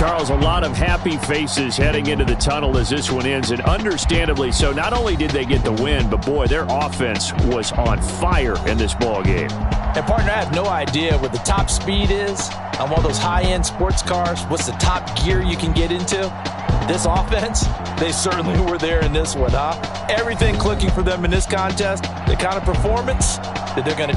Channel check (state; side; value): identical; both; correlation 1.00